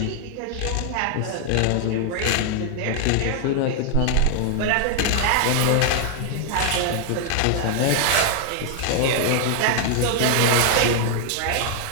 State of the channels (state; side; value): different; both; correlation 0.00